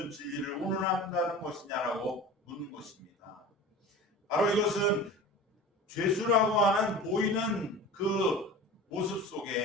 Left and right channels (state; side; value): normal; both; correlation 0.36